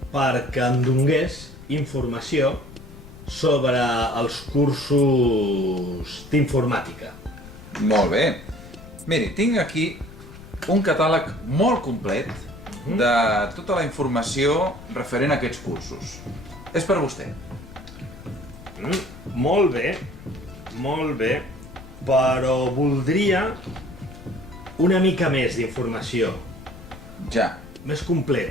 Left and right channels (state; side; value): noise; left; rumble, 17 dB below the sound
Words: perquè em donés informació sobre els cursos d'informàtica. Molt bé. Miri, tinc aquí un catàleg molt complet de tota la informació referent a aquests cursos. És per vostè. Molt bé, però voldria una mica més d'informació, Ja. més